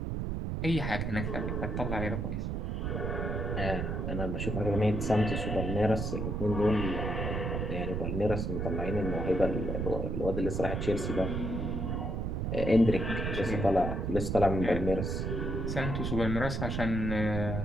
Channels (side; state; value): right; noise; rumble, 1 dB below the sound